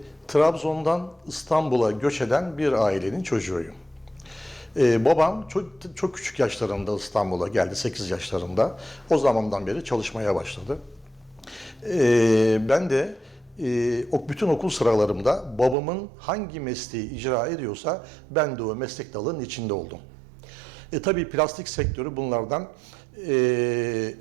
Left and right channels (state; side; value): drops out; left; at 15.8 s